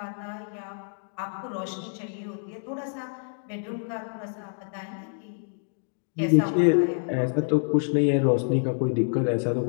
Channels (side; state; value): right; silent; digital silence